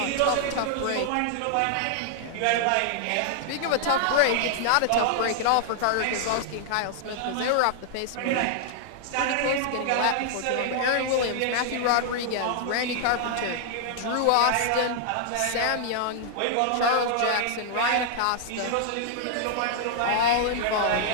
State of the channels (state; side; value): different; both; correlation -0.01